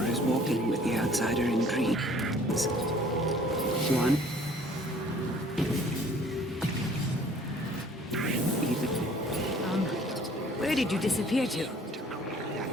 Is walking with the outsider in dreams. One Where did you disappear to?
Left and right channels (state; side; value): normal; both; correlation 0.54